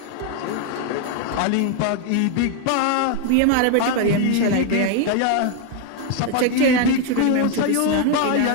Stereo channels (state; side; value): different; both; correlation 0.00